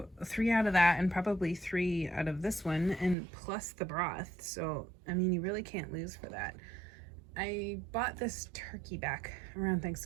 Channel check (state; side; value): drops out; left; at 3.2 s